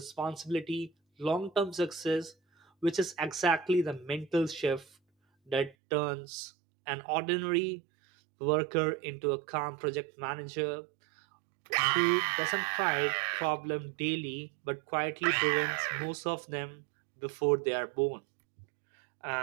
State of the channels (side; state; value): left; drops out; at 5.8 s